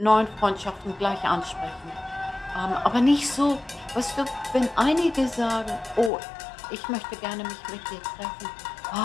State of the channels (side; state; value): right; drops out; at 6.1 s